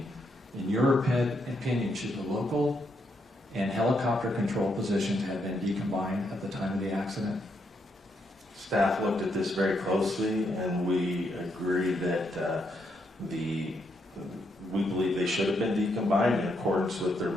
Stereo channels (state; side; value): normal; both; correlation 0.78